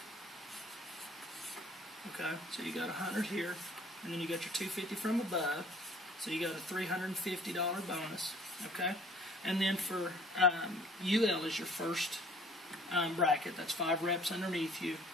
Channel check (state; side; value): normal; both; correlation 0.54